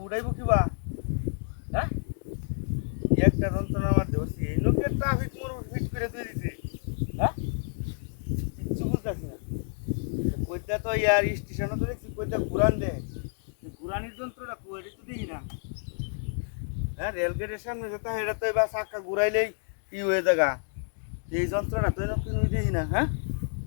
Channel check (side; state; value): right; silent; 59 dB below the other